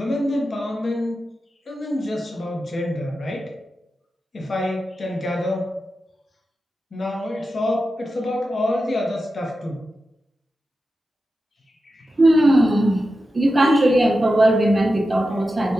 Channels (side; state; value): both; normal; correlation 0.91